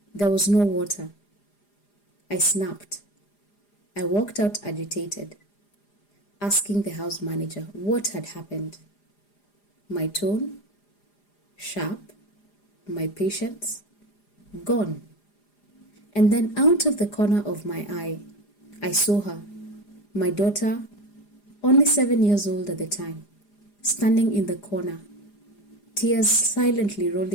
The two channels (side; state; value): right; late; 4.9 ms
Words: There was no water. I snapped. I walked out agitated, asking the house manager what had happened. My tone, sharp, my patience, gone. And then out of the corner of my eye, I saw her, my daughter, only 7 years old at the time, standing in the corner, tears silently